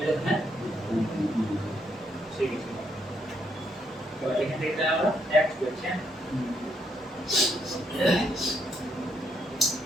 এটা হ্যাঁ ঠিক আছে তো এখান থেকে আমরা এক করছি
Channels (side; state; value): both; normal; correlation 0.74